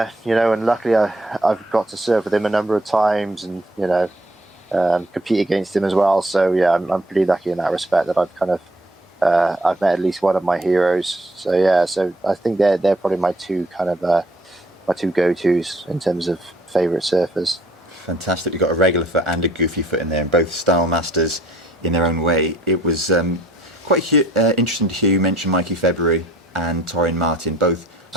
luckily I've got to surf with him a number of times and compete against him as well. So yeah, I'm pretty lucky in that respect that I've kind of I've met at least one of my heroes. So yeah, so I think they're probably my two go-tos in terms of favourite surfers. Fantastic. You've got a regular foot and a goofy foot in there, and both style masters in their own way. It was quite interesting to hear you mention Mikey February and Torren Martin. Both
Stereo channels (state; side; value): normal; both; correlation 0.61